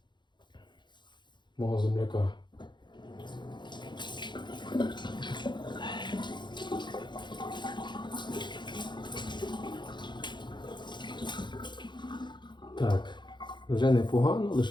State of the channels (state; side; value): late; right; 0.22 ms